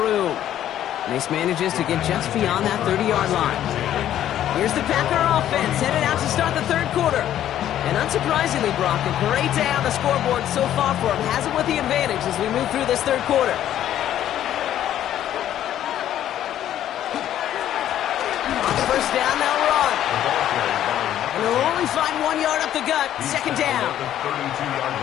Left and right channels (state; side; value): quieter; right; 11.6 dB